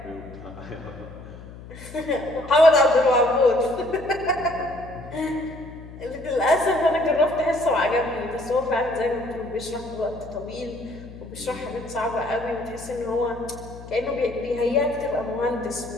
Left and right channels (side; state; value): left; noise; hum, 15 dB below the sound